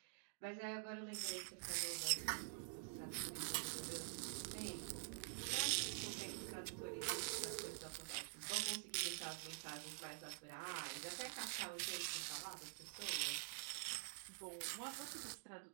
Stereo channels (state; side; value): silent; left; digital silence